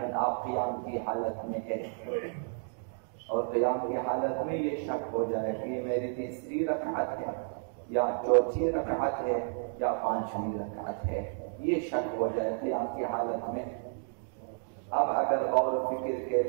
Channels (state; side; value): silent; left; digital silence